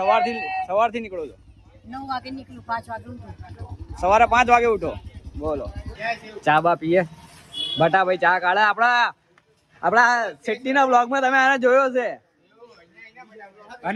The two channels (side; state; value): both; identical; correlation 1.00